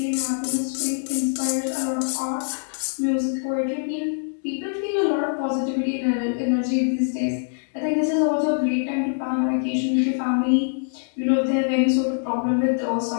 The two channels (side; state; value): right; silent; digital silence